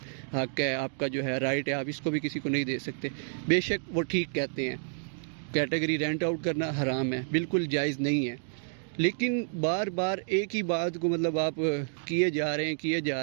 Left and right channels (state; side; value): silent; left; digital silence